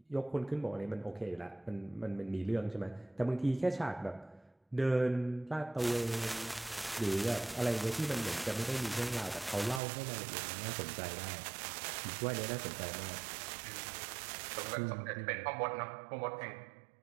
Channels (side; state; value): left; drops out; at 9.8 s